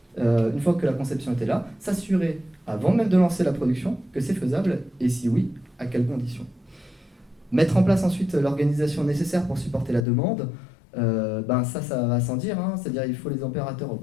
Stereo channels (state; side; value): drops out; right; at 10.1 s